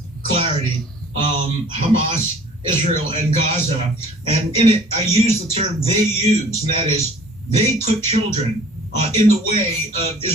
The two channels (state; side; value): normal; both; correlation 0.50